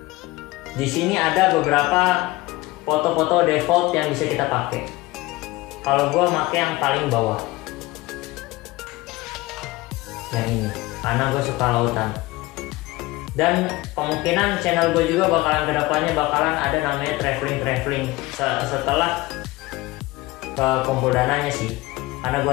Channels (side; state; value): right; quieter; 19.8 dB